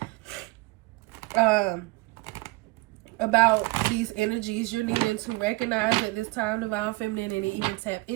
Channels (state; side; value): quieter; left; 22.9 dB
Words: about these energies you're needing to recognize at this time, divine feminine, and even tap